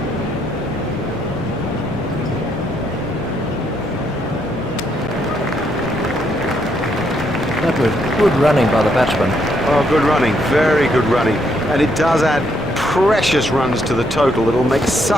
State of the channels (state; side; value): normal; both; correlation 0.74